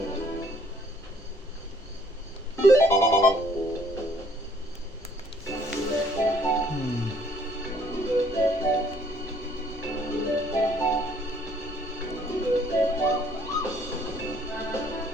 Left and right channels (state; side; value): normal; both; correlation 0.61